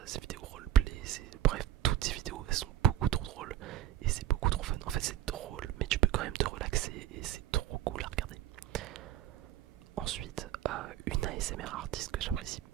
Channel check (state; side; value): quieter; left; 12.6 dB